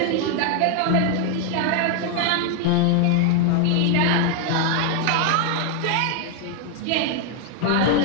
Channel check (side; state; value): both; different; correlation 0.00